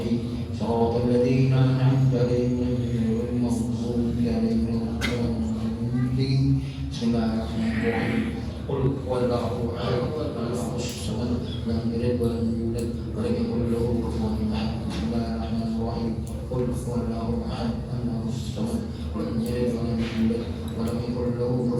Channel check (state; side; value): identical; both; correlation 1.00